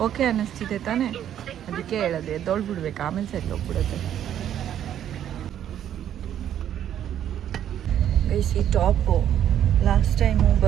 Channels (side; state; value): left; quieter; 10.4 dB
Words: ಓಕೆ ಅನ್ನಿಸ್ತಿದೆ ತಾನೇ? ಅದಕ್ಕೆ ಹೇಳೋದು, ಎದ್ದೋಳ್ಬಿಡ್ಬೇಕು, ಆಮೇಲೆ ಸರಿ ಹೋಗ್ಬಿಡುತ್ತೆ. ಈ ಟಾಪು ಲಾಸ್ಟ್ ಟೈಮು